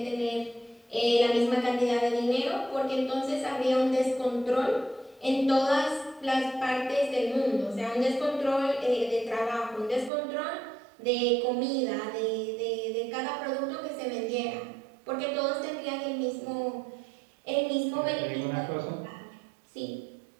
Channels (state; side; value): drops out; left; at 10.1 s